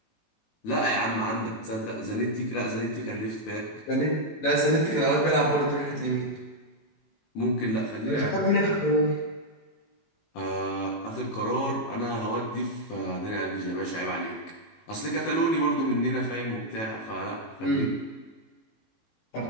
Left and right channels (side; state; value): right; late; 18 ms